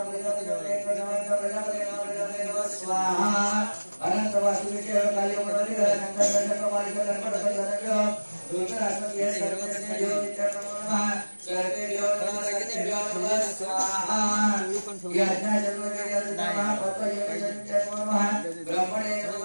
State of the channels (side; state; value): both; inverted; correlation -1.00